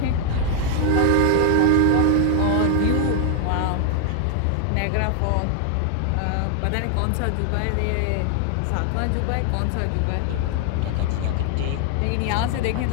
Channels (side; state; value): both; different; correlation 0.00